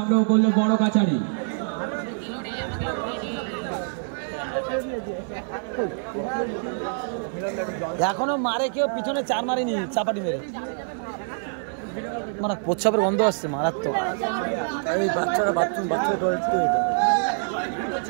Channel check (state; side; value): silent; left; 55 dB below the other